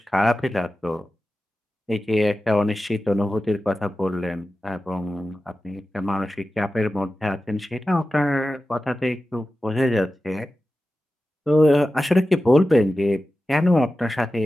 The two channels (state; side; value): normal; both; correlation 0.94